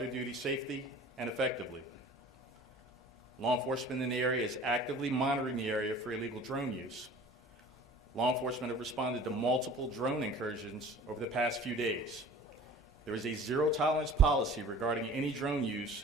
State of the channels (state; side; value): normal; both; correlation 0.45